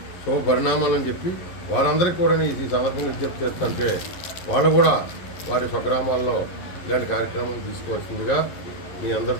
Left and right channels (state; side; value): late; right; 11 ms